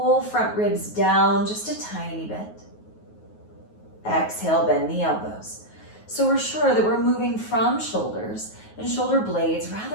front ribs down just a tiny bit. Exhale, bend the elbows. So we're sure that we're moving from shoulders and shoulder blades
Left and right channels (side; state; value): right; late; 9.4 ms